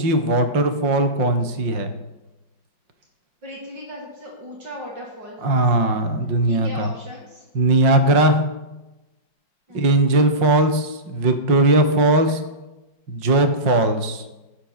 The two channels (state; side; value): late; left; 5.5 ms